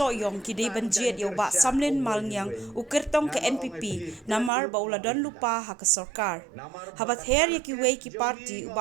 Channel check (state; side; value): drops out; left; at 4.5 s